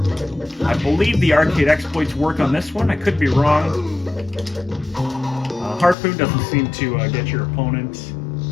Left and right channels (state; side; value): drops out; right; at 6.0 s